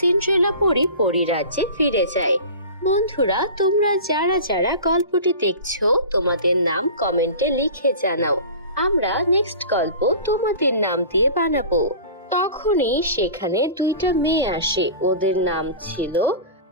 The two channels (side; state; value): both; inverted; correlation -0.36